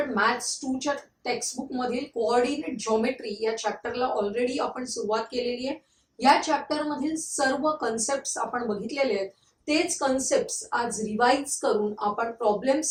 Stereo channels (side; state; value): both; identical; correlation 1.00